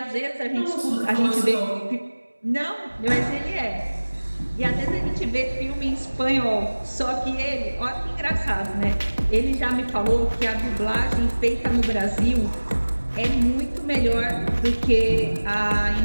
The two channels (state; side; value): inverted; both; correlation -1.00